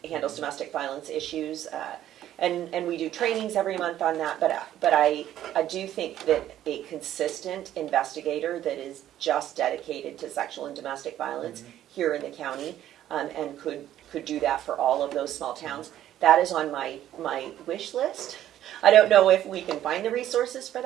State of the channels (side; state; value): left; quieter; 12.1 dB